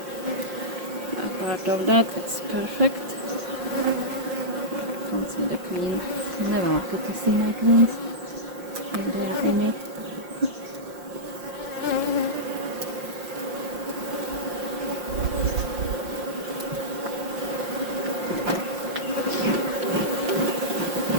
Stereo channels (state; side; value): late; left; 5.6 ms